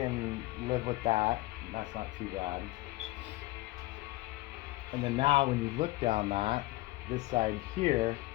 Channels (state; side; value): quieter; right; 19.6 dB